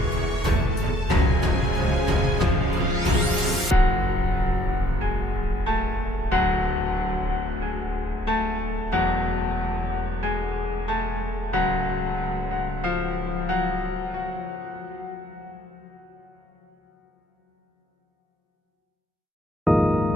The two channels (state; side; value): normal; both; correlation 0.63